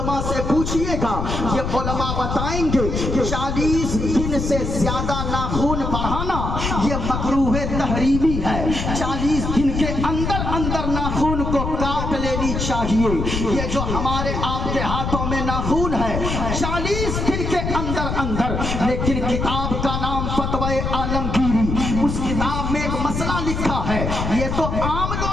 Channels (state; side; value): noise; left; rumble, 2 dB below the sound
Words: से पूछिएगा, ये उलमा बताएंगे कि 40 दिन से ज्यादा नाखून बढ़ाना ये मकरूह तहरीमी है। 40 दिन के अंदर अंदर नाखून को काट लेनी चाहिए। ये जो हमारे आपके हाथों में नाखून है 40 दिन के अंदर अंदर। लेकिन किताब का नाम फतवाए आलमगीरी, उस किताब में एक मसला लिखा है। ये तो आम